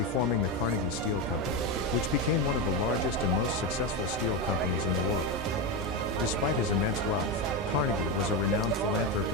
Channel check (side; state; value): both; normal; correlation 0.13